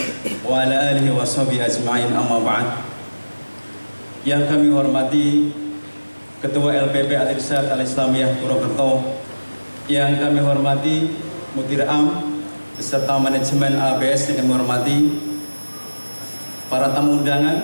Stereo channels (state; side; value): inverted; both; correlation -1.00